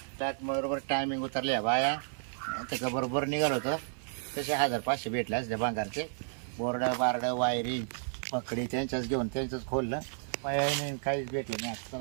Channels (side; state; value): left; silent; 56 dB below the other